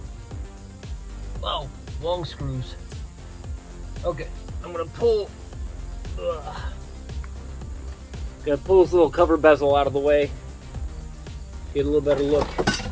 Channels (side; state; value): both; identical; correlation 1.00